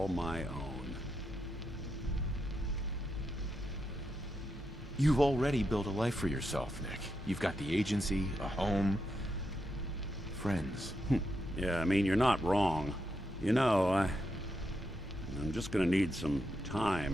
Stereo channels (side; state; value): both; normal; correlation 0.84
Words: my own. You've already built a life for yourself, Nick. You've got the agency, a home, friends. Yeah, I mean, you're not wrong. You know, I'm just gonna need some